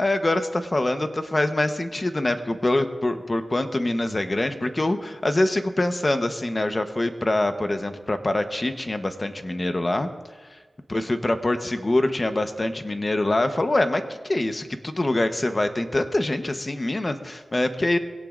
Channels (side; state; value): both; normal; correlation 0.98